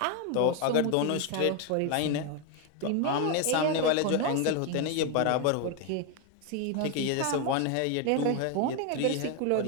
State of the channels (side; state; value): both; different; correlation 0.01